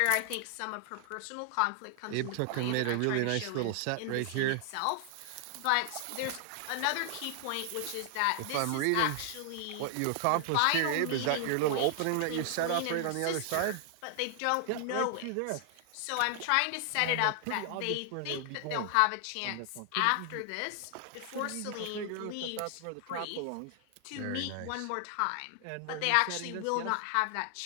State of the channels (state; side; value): different; both; correlation 0.00